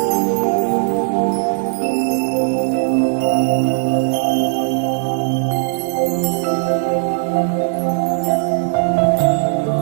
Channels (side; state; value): left; silent; 57 dB below the other